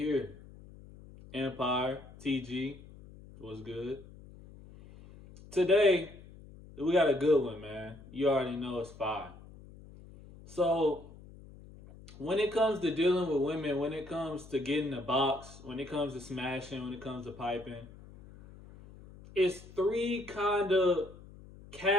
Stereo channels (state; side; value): noise; left; hum, 19 dB below the sound